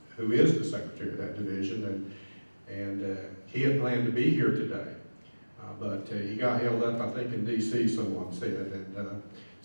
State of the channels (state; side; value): inverted; both; correlation -1.00